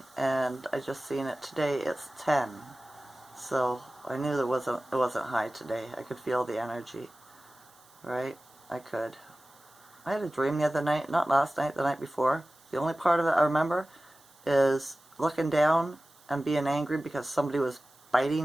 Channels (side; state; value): right; noise; hiss, 27 dB below the sound